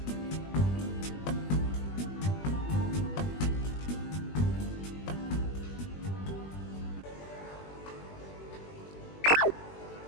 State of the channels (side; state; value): right; late; 20 ms